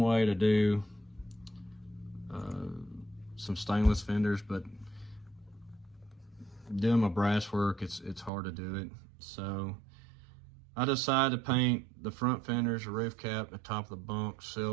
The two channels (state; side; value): drops out; left; at 8.3 s